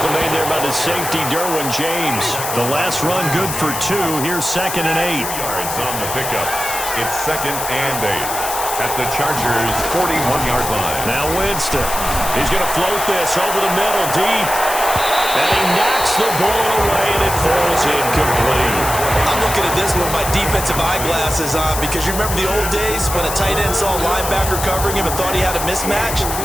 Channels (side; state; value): left; noise; hiss, 5 dB below the sound